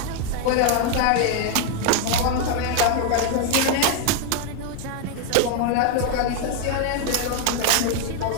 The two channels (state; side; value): different; both; correlation 0.01